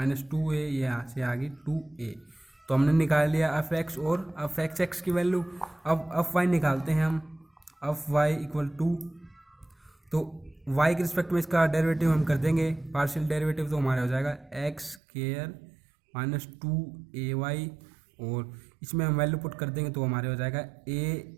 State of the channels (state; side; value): drops out; left; at 15.0 s